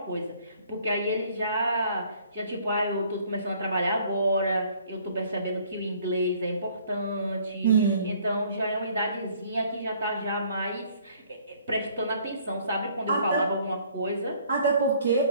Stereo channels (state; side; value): inverted; both; correlation -0.60